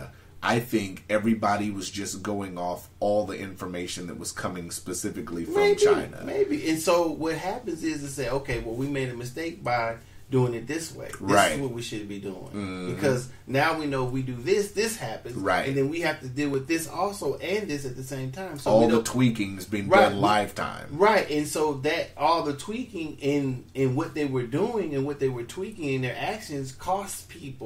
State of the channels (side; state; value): both; identical; correlation 1.00